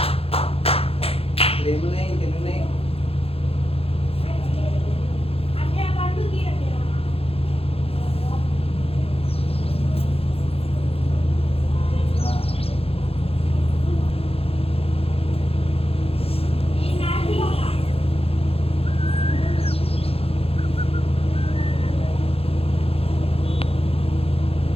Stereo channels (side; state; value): right; late; 0.28 ms